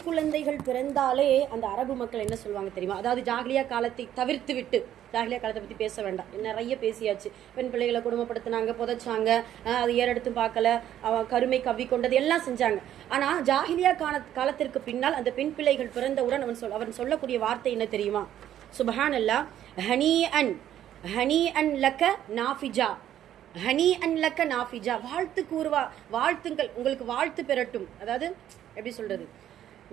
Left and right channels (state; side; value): quieter; left; 11.3 dB